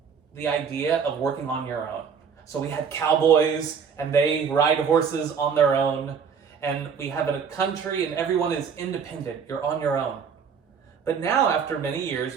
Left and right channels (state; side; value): quieter; left; 6.5 dB